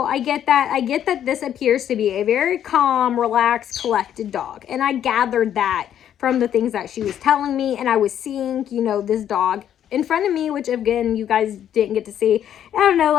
I get that. I get that this appears to be a very calm, relaxed, collected dog. And I gathered that from the things that she was telling me. And I was seeing, this dog in front of me, which again, you guys didn't get to see. I don't know,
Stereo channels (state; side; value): quieter; right; 10.1 dB